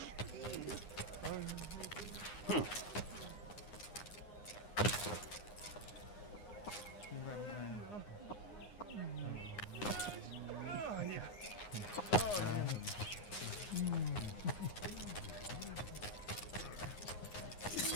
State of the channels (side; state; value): right; late; 9.7 ms